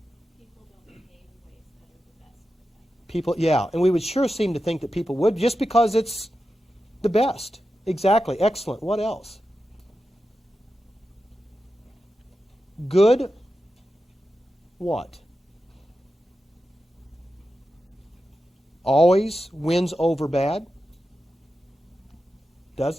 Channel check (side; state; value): both; normal; correlation 0.91